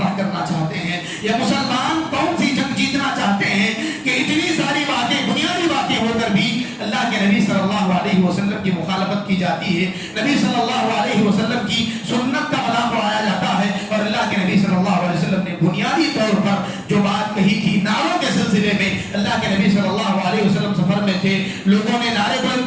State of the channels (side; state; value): both; identical; correlation 1.00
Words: کرنا چاہتے ہیں، یا مسلمان کون سی جنگ جیتنا چاہتے ہیں کہ اتنی ساری باتیں، بنیادی باتیں ہو کر بھی اللہ کے نبی صلی اللہ علیہ وسلم کی مخالفت کی جاتی ہے، نبی صلی اللہ علیہ وسلم کی سنت کا مذاق اڑایا جاتا ہے. اور اللہ کے نبی صلی اللہ علیہ وسلم نے بنیادی طور پر جو بات کہی تھی نعروں کے سلسلے میں، اللہ کے نبی صلی اللہ علیہ وسلم سفر میں تھے، لوگوں نے نعرے